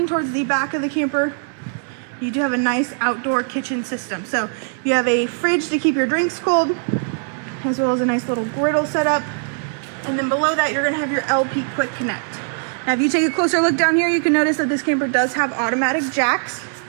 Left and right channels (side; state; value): left; silent; 65 dB below the other